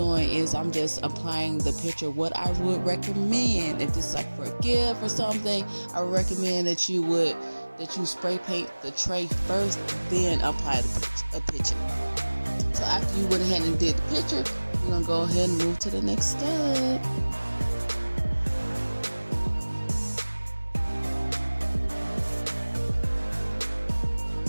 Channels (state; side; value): inverted; both; correlation -1.00